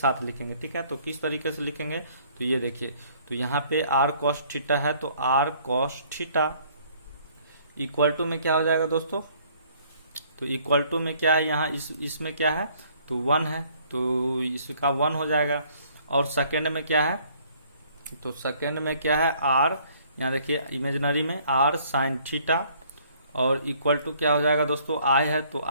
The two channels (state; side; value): inverted; both; correlation -0.60